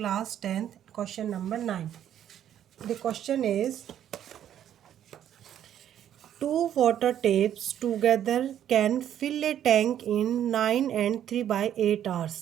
10th question number 9. The question is two water tapes together can fill a tank in 9 and 3/8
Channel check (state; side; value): quieter; left; 10.5 dB